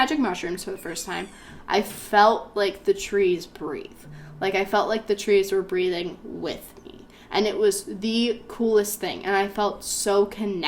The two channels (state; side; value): identical; both; correlation 1.00